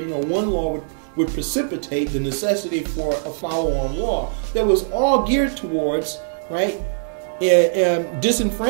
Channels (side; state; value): left; silent; 65 dB below the other